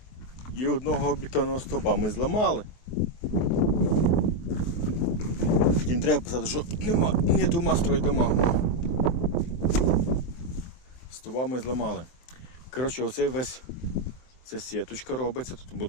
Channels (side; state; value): right; late; 23 ms